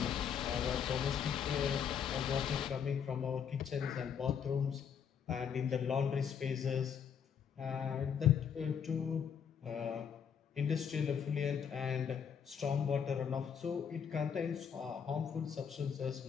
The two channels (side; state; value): right; quieter; 7.5 dB